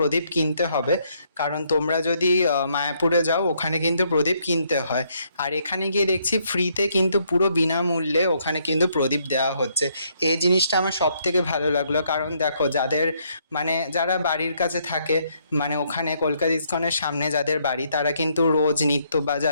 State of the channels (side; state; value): both; inverted; correlation -0.71